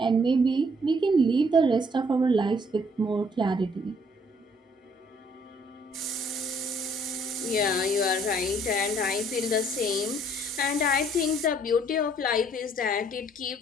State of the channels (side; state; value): both; normal; correlation 0.63